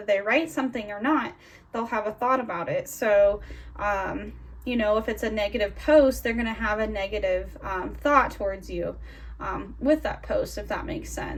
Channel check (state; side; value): identical; both; correlation 1.00